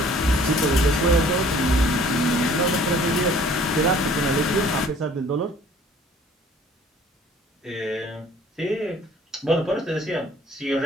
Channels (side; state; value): both; normal; correlation 0.54